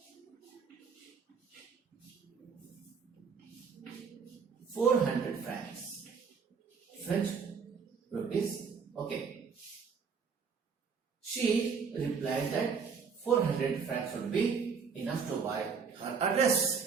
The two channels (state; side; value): quieter; left; 5.8 dB